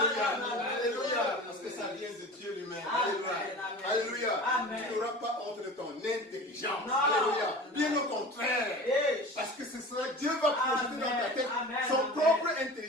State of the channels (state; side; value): normal; both; correlation 0.36